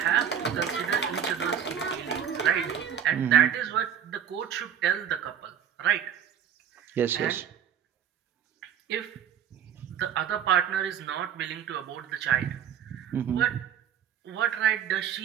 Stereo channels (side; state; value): left; quieter; 8.8 dB